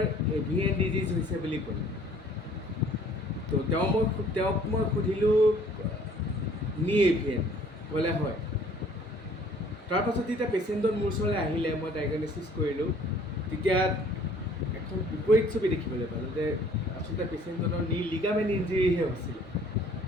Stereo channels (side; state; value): both; normal; correlation 0.56